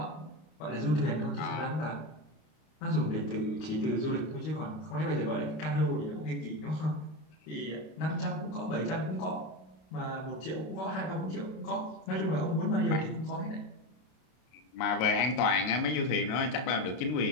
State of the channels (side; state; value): right; late; 32 ms